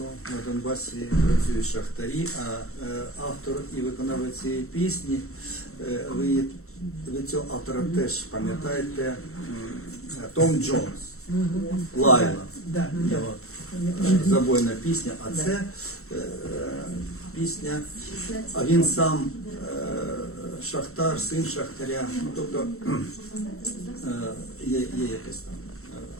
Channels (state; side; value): late; right; 0.63 ms